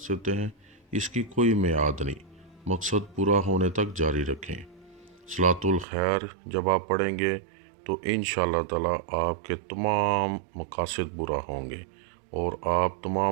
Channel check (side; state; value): left; drops out; at 5.9 s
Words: हैं, इसकी कोई मियाद नहीं, मकसद पूरा होने तक जारी रखें। सलातुल खैर जब आप पढ़ेंगे तो इंशाअल्लाह ताला आपके तमाम मकासद पूरा होंगे और आप